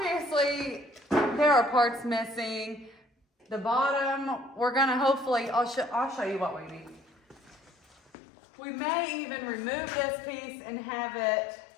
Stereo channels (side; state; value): right; drops out; at 8.1 s